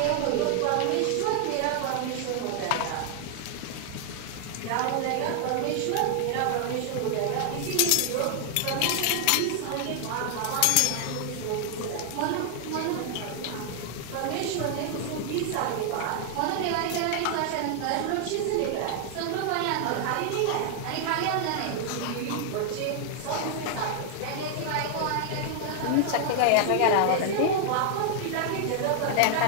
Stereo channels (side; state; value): both; different; correlation 0.00